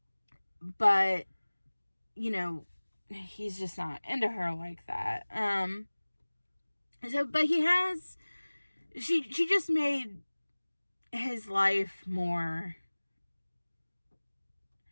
But, you know, he's just not into her like that. But she just made his life more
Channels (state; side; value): inverted; both; correlation -1.00